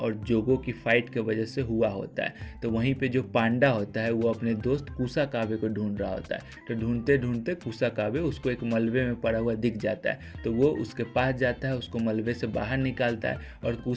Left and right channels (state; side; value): identical; both; correlation 1.00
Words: जोगो की फाइट की वजह से हुआ होता है। तो वहीं पे जो पांडा होता है वो अपने दोस्त कुसाकाबे को ढूंढ रहा होता है। तो ढूंढते ढूंढते कुसाकाबे उसको एक मलबे में पड़ा हुआ दिख जाता है। तो वो उसके पास जाता है, उसको मलबे से बाहर निकालता है। और